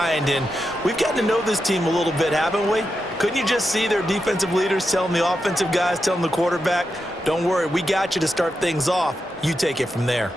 and we've gotten to know this team a little bit, haven't we? Couldn't you just see their defensive leaders telling the offensive guys, telling the quarterback, don't worry, we got you to start things off. You take it from there.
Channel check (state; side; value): normal; both; correlation 0.87